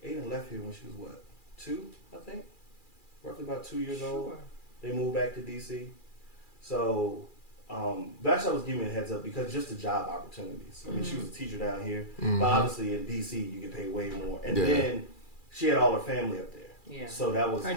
Aiden left here when she was what, 2, I think? Roughly about 2 years old. Sure. They moved back to DC. So, Vashti was giving me a heads up because just the job opportunities. I mean, she was a teacher down here, but obviously in DC you get paid way more. And Yeah. then she had all her family up there. Yeah. So that was Her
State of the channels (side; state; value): right; late; 2.4 ms